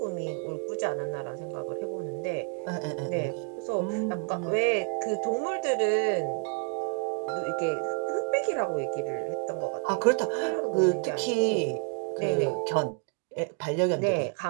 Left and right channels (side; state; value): left; quieter; 38.2 dB